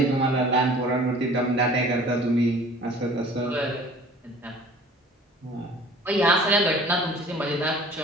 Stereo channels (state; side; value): normal; both; correlation 0.48